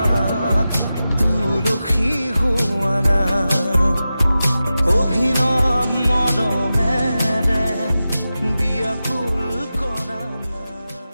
তুলসী হোৱা না অভিনৱ মৰমেৰে বিয়াকুল কৰা না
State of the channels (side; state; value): both; inverted; correlation -0.93